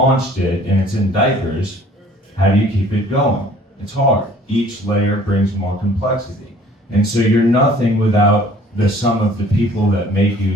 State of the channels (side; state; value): both; normal; correlation 0.53